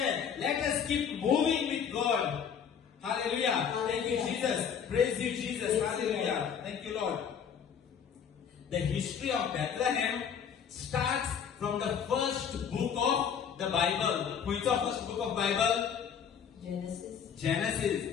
let us keep moving with God. Hallelujah. Thank you, Jesus. Praise you, Jesus. Hallelujah. Thank you, Lord. the history of Bethlehem starts from the first book of the Bible. Which of first book of Bible?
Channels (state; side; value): quieter; right; 7.6 dB